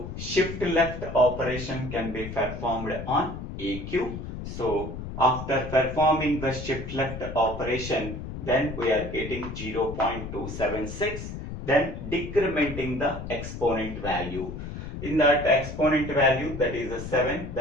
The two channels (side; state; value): left; noise; rumble, 8 dB below the sound